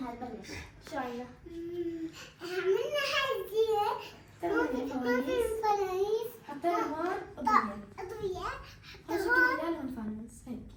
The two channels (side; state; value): both; identical; correlation 1.00